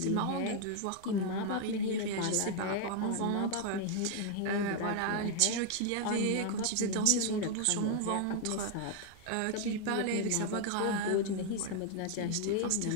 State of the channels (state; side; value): different; both; correlation 0.00